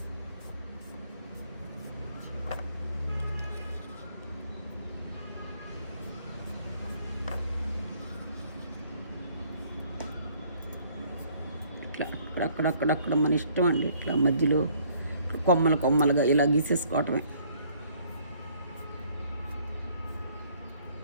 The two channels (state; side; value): inverted; both; correlation -0.61